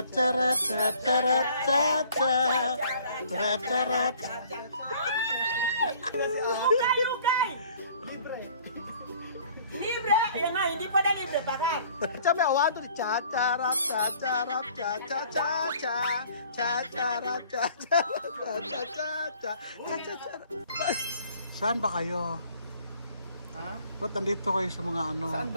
tatarat, tatarat, tatarat. Ukay! Libre! Yan nga, hindi pala libre, bakit? Sabi awado ni chacharat, chacharat, chachachacha, chacharat, chacharat, chachacha, chachacharat. Saan ba kayo? Ha? Ba't nandito kayo sa mga ano? Saan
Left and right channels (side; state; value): both; inverted; correlation -0.55